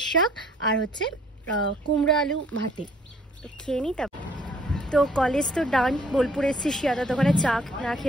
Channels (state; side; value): normal; both; correlation 0.60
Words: শাক, আর হচ্ছে কুমড়া আলু ভাতে। তো খেয়ে নিই। তারপর তো কলেজ তো ডান। বোলপুর এসেছি, শিয়াদা দোকানে চা না